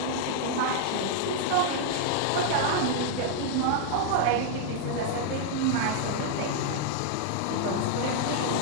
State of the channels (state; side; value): different; both; correlation 0.00